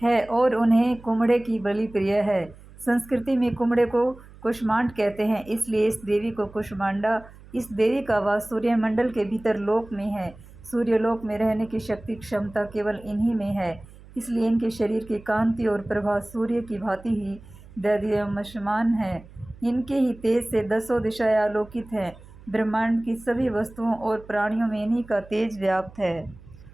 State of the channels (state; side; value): noise; right; hum, 21 dB below the sound